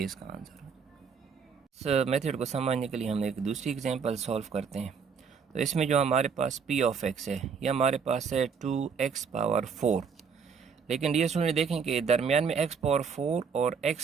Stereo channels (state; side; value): quieter; left; 6.1 dB